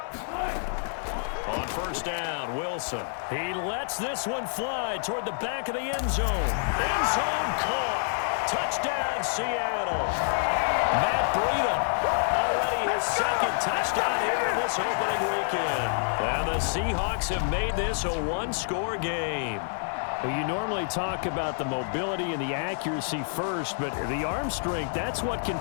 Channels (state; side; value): silent; right; digital silence